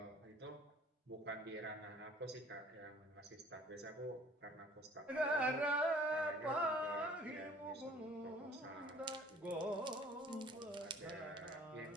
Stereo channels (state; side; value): normal; both; correlation 0.53